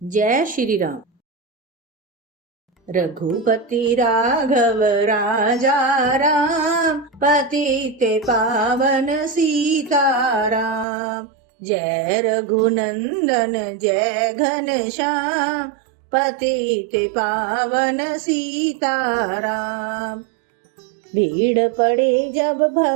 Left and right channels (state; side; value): drops out; left; at 10.9 s